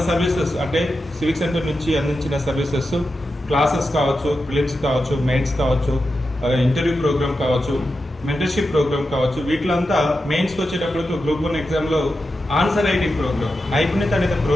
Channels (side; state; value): both; normal; correlation 0.90